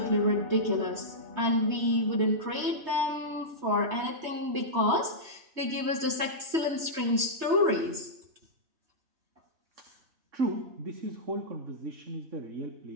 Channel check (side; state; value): left; late; 3.3 ms